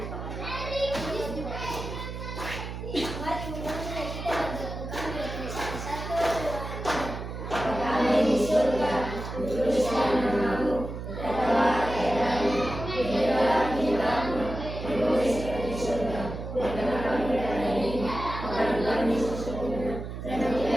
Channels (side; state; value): right; noise; hum, 7 dB below the sound